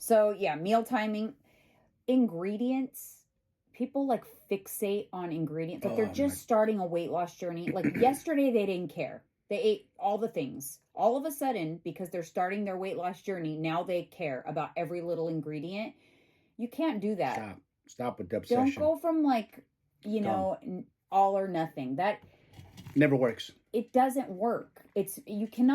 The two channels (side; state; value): both; identical; correlation 1.00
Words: yeah, meal timing, ingredients. People like fixate on ingredients. Like they're just starting a weight loss journey. Like yesterday they didn't care. They ate all the things. All of a sudden, because they're starting their weight loss journey, now they care about every little ingredient. You can't do that. Stop with the obsession. Don't go from like, all or nothing. That never works. It doesn't work. You